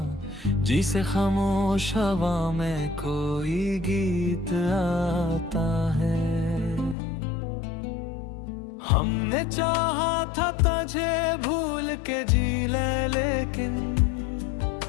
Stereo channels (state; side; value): drops out; right; at 7.0 s